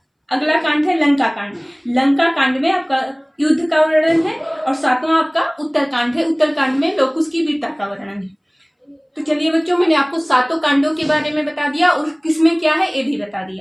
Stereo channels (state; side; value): identical; both; correlation 1.00